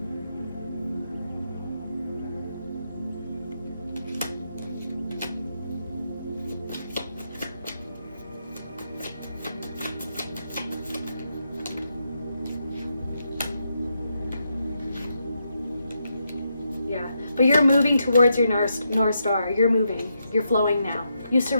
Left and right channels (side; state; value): both; inverted; correlation -0.82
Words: But you're moving towards your North Star. You're moving. You're flowing now. You